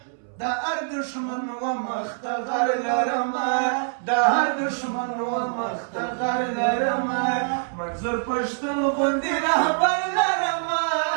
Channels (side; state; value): left; silent; 62 dB below the other